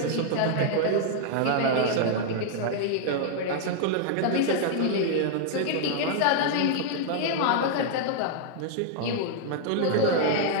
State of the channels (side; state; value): both; different; correlation -0.01